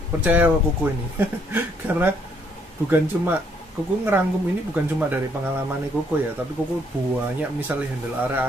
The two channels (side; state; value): both; normal; correlation 0.69